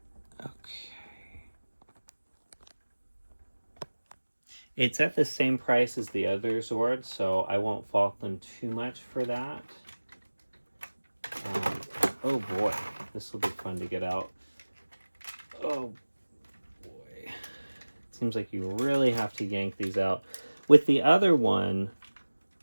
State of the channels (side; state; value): both; inverted; correlation -1.00